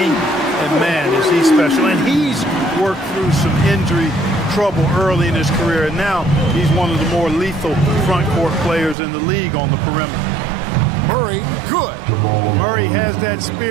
And, man, is he special. And he's worked through some injury trouble early in his career, and now he's one of the more lethal front court players in the league on the perimeter. Murray, good. Murray has that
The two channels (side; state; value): left; drops out; at 9.0 s